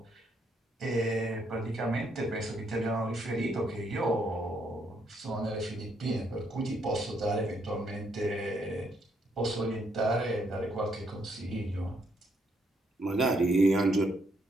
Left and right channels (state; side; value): normal; both; correlation 0.73